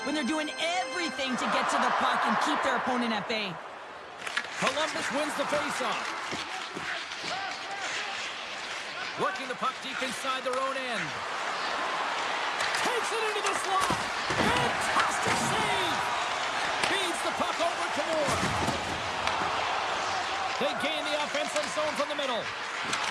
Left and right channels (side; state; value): both; identical; correlation 1.00